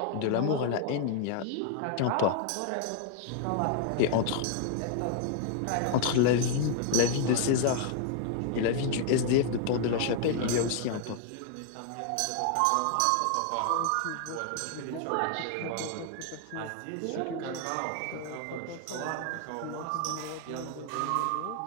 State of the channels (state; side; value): different; both; correlation 0.00